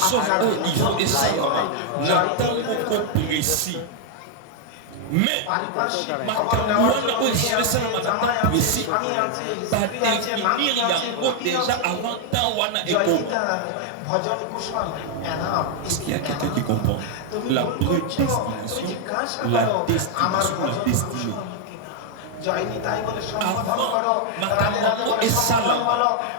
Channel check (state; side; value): different; both; correlation 0.00